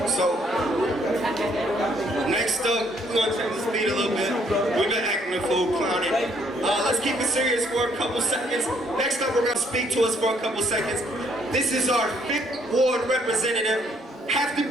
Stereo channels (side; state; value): both; normal; correlation 0.67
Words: So, next up, we're gonna take the speed a little bit. We've been acting a fool, clowning. Let's keep it serious for a couple seconds. Next up, we're gonna speak to us for a couple seconds. This is our 5th ward representative. Have to